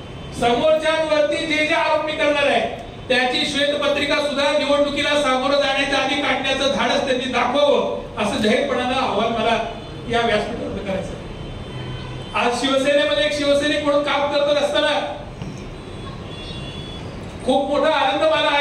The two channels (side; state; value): both; identical; correlation 1.00